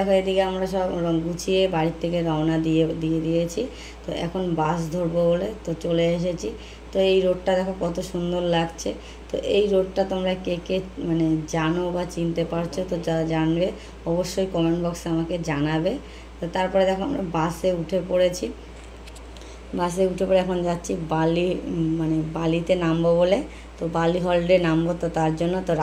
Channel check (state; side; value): identical; both; correlation 1.00